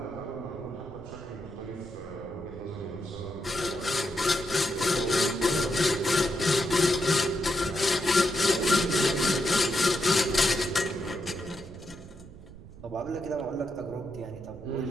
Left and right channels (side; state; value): right; noise; rumble, 17 dB below the sound